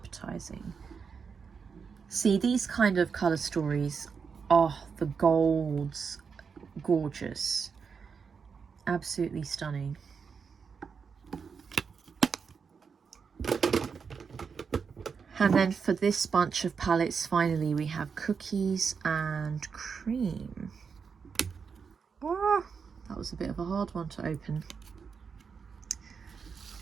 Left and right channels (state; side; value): quieter; left; 5.9 dB